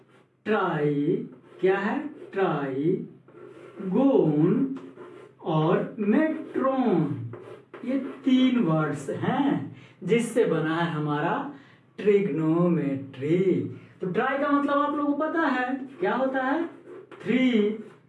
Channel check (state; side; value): identical; both; correlation 1.00